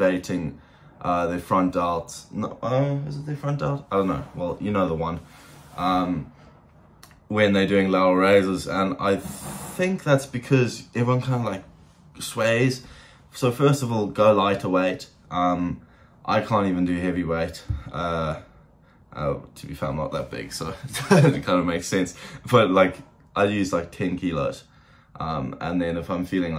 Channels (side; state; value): both; identical; correlation 1.00